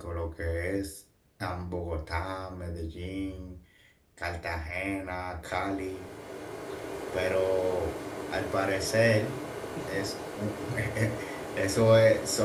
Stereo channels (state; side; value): identical; both; correlation 1.00